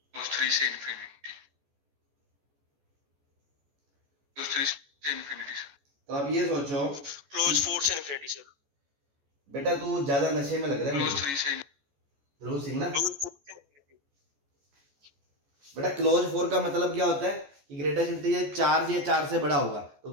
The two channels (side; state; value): left; late; 14 ms